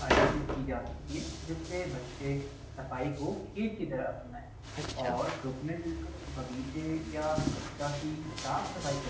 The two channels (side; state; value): both; identical; correlation 1.00